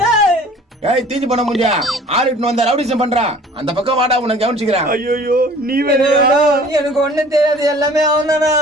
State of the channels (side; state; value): both; normal; correlation 0.49